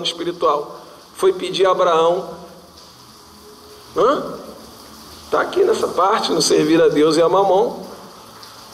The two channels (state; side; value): identical; both; correlation 1.00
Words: espiritual? Foi pedir a Abraão, está aqui nessa parte, no servir a Deus e a mamon.